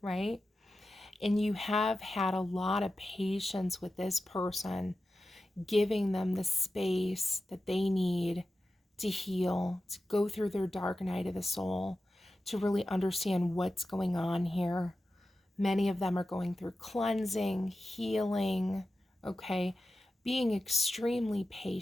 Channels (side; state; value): both; normal; correlation 0.93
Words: right? And you have had a lot of patience with this person, giving them the space that they need to heal, to go through their dark night of the soul, to really understand what's going on here. Many of them are going through cleansing, healing, okay? Being extremely